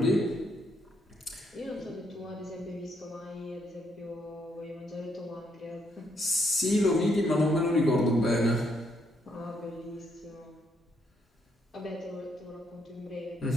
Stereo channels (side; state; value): both; normal; correlation 0.74